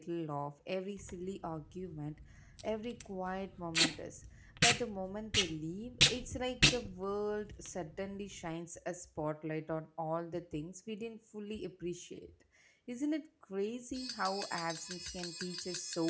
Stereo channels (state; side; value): identical; both; correlation 1.00